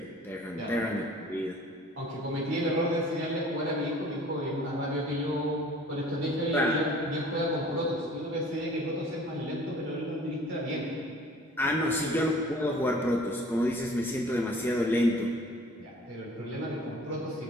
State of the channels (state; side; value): normal; both; correlation 0.49